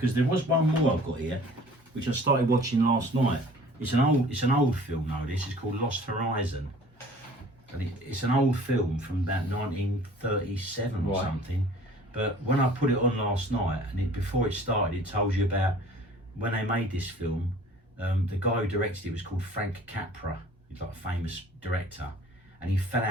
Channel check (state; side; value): normal; both; correlation 0.49